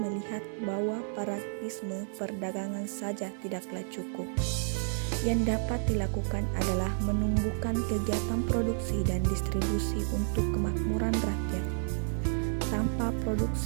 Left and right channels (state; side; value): silent; left; 57 dB below the other